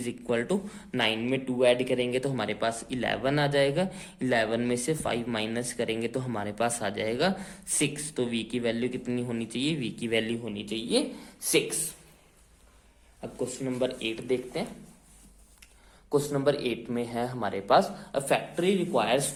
इक्वल टू 9 में 2 ऐड करेंगे तो हमारे पास 11 आ जाएगा, 11 में से 5 माइनस करेंगे तो हमारे पास आ जाएगा 6। तो v की वैल्यू कितनी होनी चाहिए, v की वैल्यू होनी चाहिए 6। अब क्वेश्चन नंबर 8 देखते हैं। क्वेश्चन नंबर 8 में है हमारे पास, a factory requires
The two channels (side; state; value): both; identical; correlation 1.00